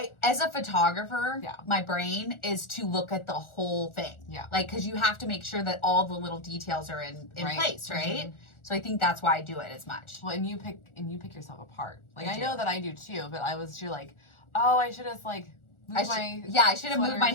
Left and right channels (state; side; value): late; right; 1.4 ms